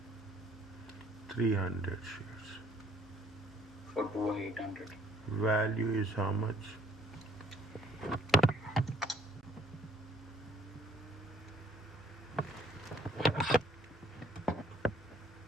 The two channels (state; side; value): normal; both; correlation 0.62